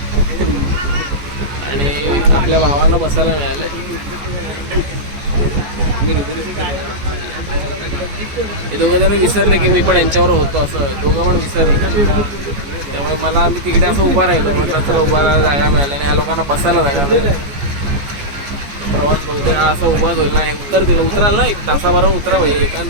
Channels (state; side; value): late; left; 14 ms